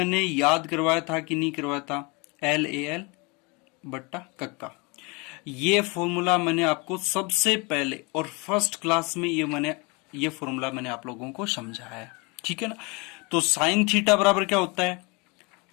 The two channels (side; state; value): right; quieter; 28.8 dB